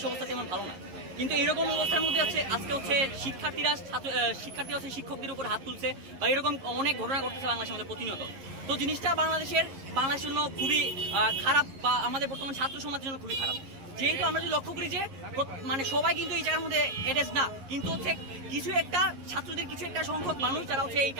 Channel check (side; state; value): left; late; 11 ms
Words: অবস্থা তেমন ভালো না, কিন্তু এরকম অবস্থার মধ্যে হচ্ছে আজকে হচ্ছে শিক্ষার্থীরা হচ্ছে শিক্ষকদের উপর হাত তুলছে বা এরকম অনেক ঘটনা ঘটতেছে বাংলাদেশের মধ্যে প্রতিনিয়ত। তো জিনিসটা বাংলাদেশের জন্য খুবই খারাপ বা আমাদের বর্তমান ছাত্র সমাজের জন্য খুবই খারাপ। যেহেতু আমরা যদি লক্ষ্য করি যে মানে সবাই কিন্তু এই জায়গার মধ্যে এডেজ না, কিন্তু হচ্ছে কিছু একটা ছাত্রদের কিছু একটা সংখ্যক মানুষ যারা হচ্ছে এই